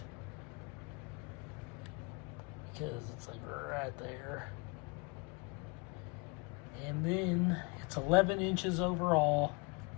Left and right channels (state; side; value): quieter; right; 29.5 dB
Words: because it's like right there. And then it's 11 inches overall.